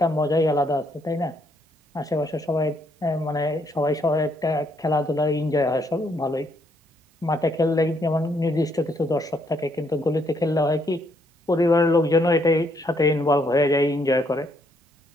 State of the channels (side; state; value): both; normal; correlation 0.72